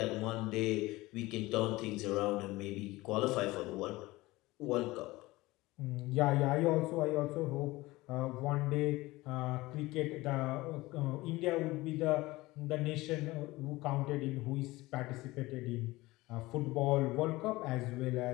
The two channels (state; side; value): quieter; right; 19.9 dB